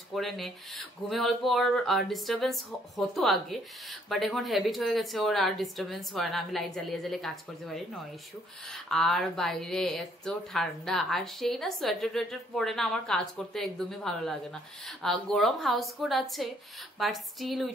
করে নে। ঘুমে অল্প ওর ডিস্টারবেন্স হতো আগে, বাট এখন হ্যাবিট হয়ে গেছে, ওর আর ডিস্টারবেন্স হয় না। আমি লাইট জ্বালিয়ে জ্বালিয়ে কাজ করতে পারি, নো ইস্যু। আর বাইরে এত ঠান্ডা, আর সেই না সোয়েটার টোয়েটার পরে না আমার কাজ করতে একদমই ভালো লাগে না। গরম হাউস কোট আছে, বাট স্টিল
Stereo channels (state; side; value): normal; both; correlation 0.66